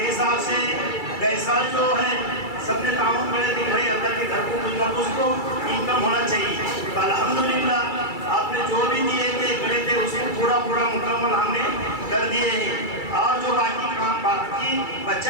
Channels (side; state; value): right; late; 2.3 ms